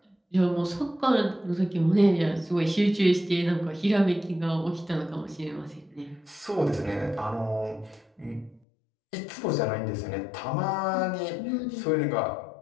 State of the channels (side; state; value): right; drops out; at 8.6 s